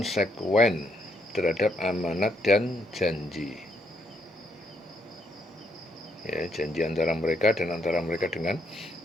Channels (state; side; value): normal; both; correlation 0.74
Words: terhadap amanat dan janji. Ya, janji antara mereka dan antara mereka dengan